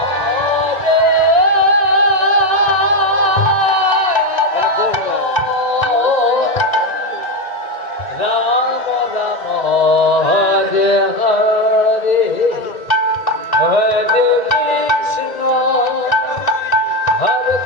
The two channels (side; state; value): right; late; 1.9 ms